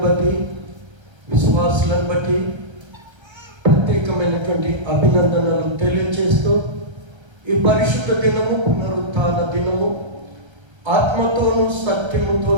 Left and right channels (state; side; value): late; left; 1.3 ms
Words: బట్టి, విశ్వాసులను బట్టి ప్రత్యేకమైనటువంటి అభినందనలు తెలియజేస్తూ, ఈ పరిశుద్ధ దినము పునరుత్థాన దినము, ఆత్మతోనూ